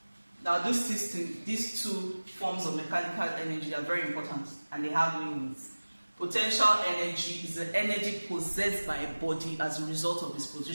Now, these two forms of mechanical energy are very important, and they have meanings. Potential energy is the energy possessed by a body as a result of its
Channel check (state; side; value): inverted; both; correlation -1.00